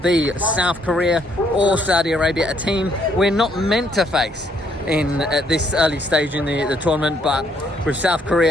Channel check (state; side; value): normal; both; correlation 0.69